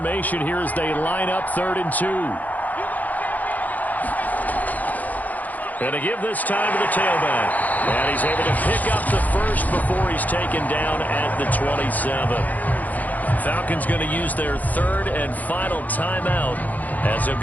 here as they line up 3rd and 2. And to give this time to the tailback. And he's able to pick up the first before he's taken down at the 27. Falcons going to use their 3rd and final timeout as they'll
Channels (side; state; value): right; late; 0.080 ms